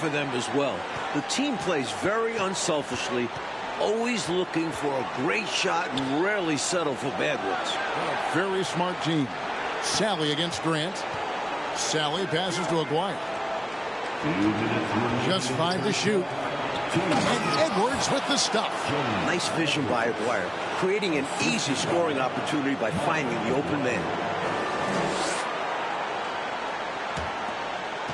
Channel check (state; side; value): identical; both; correlation 1.00